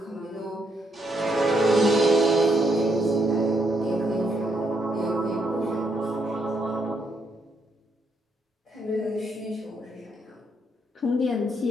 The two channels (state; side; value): normal; both; correlation 0.76